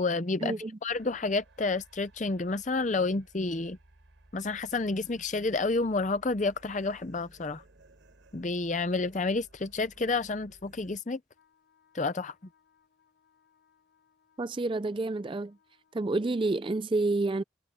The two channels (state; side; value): normal; both; correlation 0.44